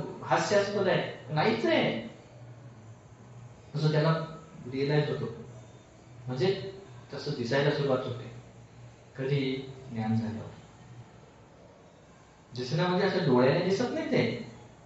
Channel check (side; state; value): both; identical; correlation 1.00